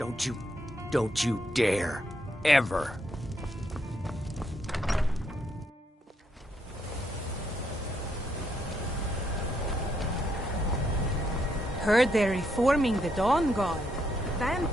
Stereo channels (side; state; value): both; normal; correlation 0.76